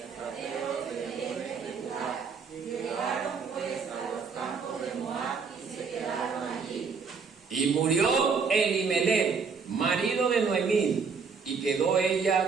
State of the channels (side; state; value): left; quieter; 5.5 dB